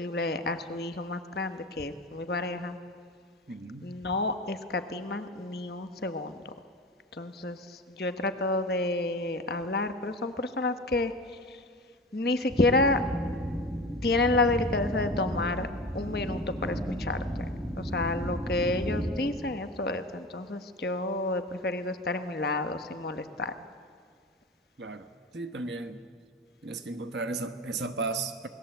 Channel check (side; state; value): both; normal; correlation 0.32